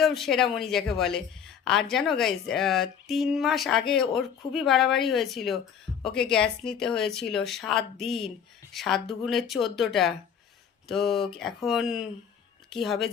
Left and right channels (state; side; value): quieter; right; 7.8 dB